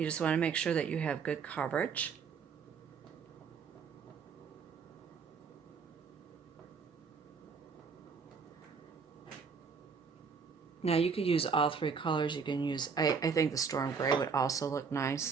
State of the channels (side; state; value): left; quieter; 5.7 dB